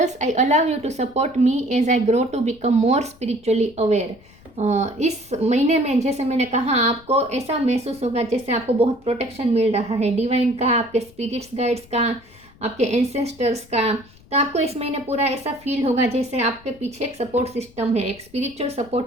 I allow you to support me as I grow to become more spiritually aware. इस महीने में जैसे मैंने कहा, आपको ऐसा महसूस होगा जैसे आपको बहुत प्रोटेक्शन मिल रहा है डिवाइन का, आपके स्पिरिट्स गाइड्स का, आपके एंसेस्टर्स का। तो आपको इस महीने पूरा ऐसा फील होगा जैसे आपके पीछे एक सपोर्ट सिस्टम है, एक स्पिरिचुअल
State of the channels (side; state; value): left; noise; rumble, 26 dB below the sound